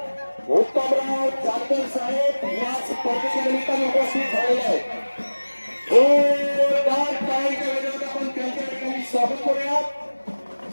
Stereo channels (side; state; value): both; inverted; correlation -1.00